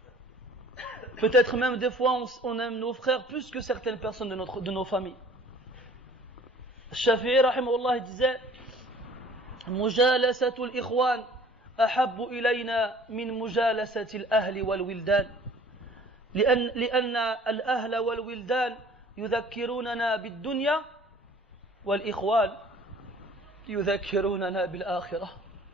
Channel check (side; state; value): both; normal; correlation 0.51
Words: Peut-être même des fois on aime nos frères plus que certaines personnes de nos familles. Shafi'i rahimahullah disait مجالسة الإخوان أحب إلينا من مجالسة الأهل والولدان لأن الأهل والولدان يذكروننا بالدنيا والإخوان يذكروننا بالآخرة.